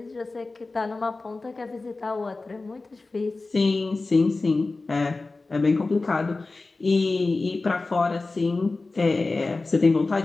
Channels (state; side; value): quieter; right; 3.5 dB